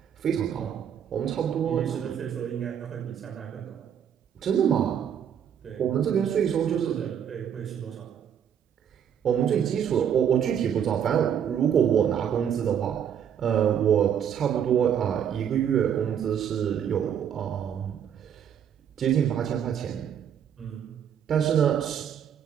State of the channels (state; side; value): quieter; left; 8.7 dB